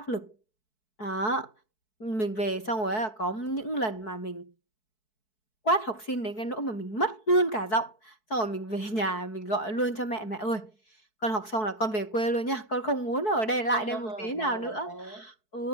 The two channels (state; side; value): late; right; 4.6 ms